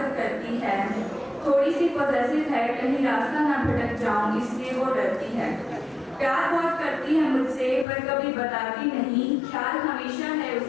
करती है। थोड़ी सी पॉजेसिव है, कहीं रास्ता ना भटक जाऊं इसलिए वो डरती है। प्यार बहुत करती है मुझसे पर कभी बताती नहीं, ख्याल हमेशा है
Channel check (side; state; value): right; drops out; at 7.9 s